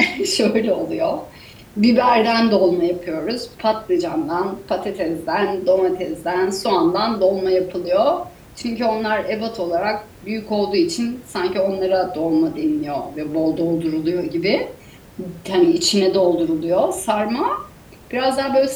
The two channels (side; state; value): both; identical; correlation 1.00